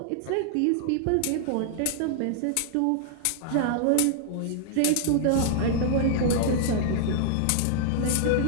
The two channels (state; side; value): different; both; correlation -0.01